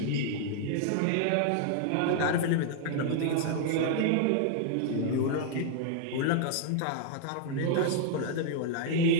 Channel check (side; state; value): both; different; correlation 0.00